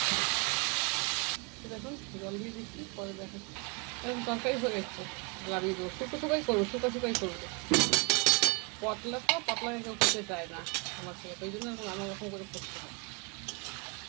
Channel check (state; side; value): quieter; left; 33.0 dB